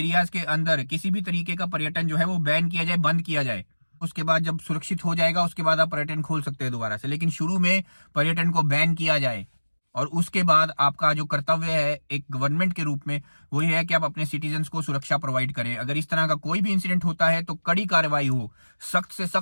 के अंदर किसी भी तरीके का पर्यटन जो है वो बैन किया जाए, बंद किया जाए। उसके बाद जब सुरक्षित हो जाएगा, उसके बाद आप पर्यटन खोल सकते हैं दोबारा से, लेकिन शुरू में पर्यटन को बैन किया जाए। और उसके बाद आपका जो कर्तव्य है एक गवर्नमेंट के रूप में, वो ये है कि आप अपने सिटीजन्स को सुरक्षा प्रोवाइड करें। अगर इस तरह का कोई भी इंसिडेंट होता है तो कड़ी कार्रवाई हो, सख्त से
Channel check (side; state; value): both; inverted; correlation -1.00